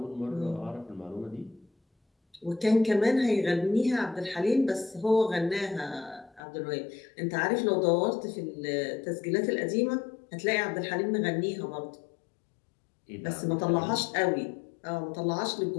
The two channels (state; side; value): drops out; right; at 6.4 s